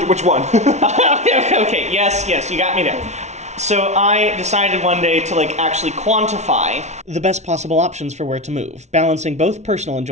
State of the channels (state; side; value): late; left; 0.32 ms